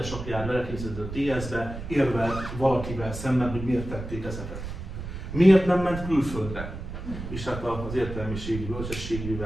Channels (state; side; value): noise; right; rumble, 8 dB below the sound